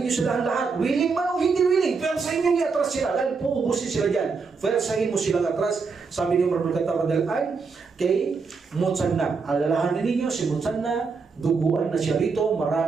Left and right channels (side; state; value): left; quieter; 4.9 dB